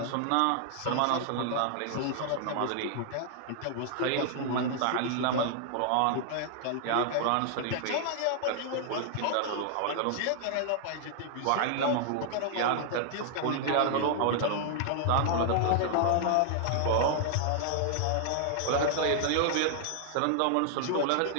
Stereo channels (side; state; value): both; different; correlation -0.01